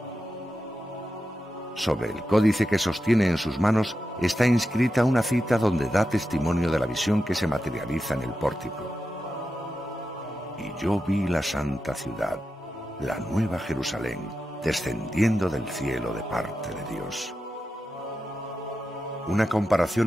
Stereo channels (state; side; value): normal; both; correlation 0.90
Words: Sobre el códice que sostiene en sus manos está inscrita una cita donde da testimonio de la visión que se materializa en el pórtico. Y yo vi la santa ciudad, la nueva Jerusalén, descendiendo del cielo de parte de Dios. Una